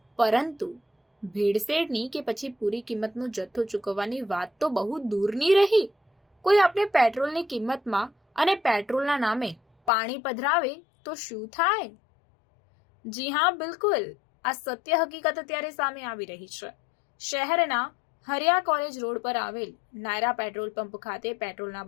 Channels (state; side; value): drops out; right; at 9.9 s